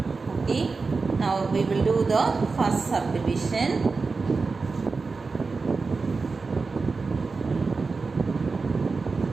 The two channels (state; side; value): quieter; left; 4.3 dB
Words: Okay, now we will do the first subdivision.